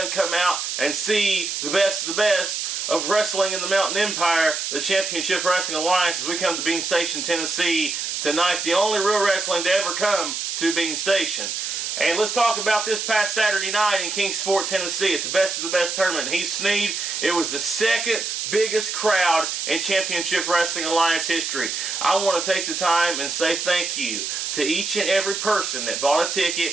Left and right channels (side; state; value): right; noise; hiss, 3 dB below the sound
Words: come out and see the best of the best of wrestling in the Mountain Empire, the Championship Wrestling Alliance, as we come to Bean Station, Tennessee tonight. The only real wrestling to ever come to Bean Station. And let's talk about this past Saturday night in Kingsport, Tennessee at the Best of the Best tournament. Heath Sneed, it was the second biggest crowd in Championship Wrestling Alliance history. I want to take the time and say thank you to each and every person that bought a